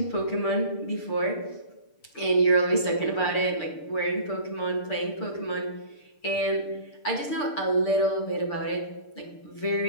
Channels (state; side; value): late; right; 6.7 ms